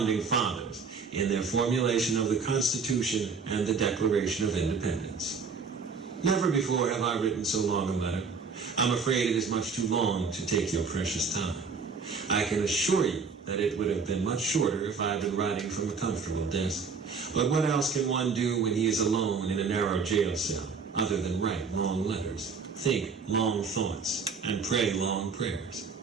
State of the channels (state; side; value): quieter; left; 5.2 dB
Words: Fathers in their formulation of the Constitution and the Declaration of Independence. Never before have I written so long a letter. I'm afraid it is much too long to take your precious time. I can assure you that it would have been much shorter if I had been writing from a comfortable desk. But what else can one do when he is alone in a narrow jail cell, other than write long letters, think long thoughts, and pray long prayers?